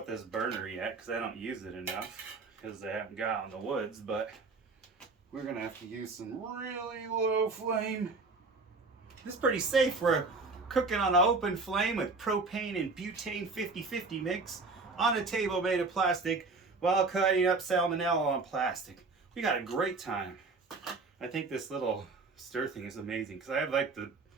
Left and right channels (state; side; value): quieter; left; 3.9 dB